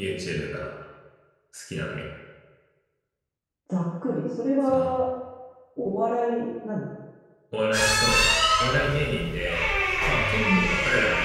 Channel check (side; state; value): both; identical; correlation 1.00